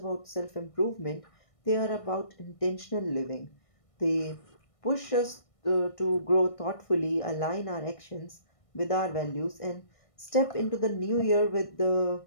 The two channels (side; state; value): right; late; 1.6 ms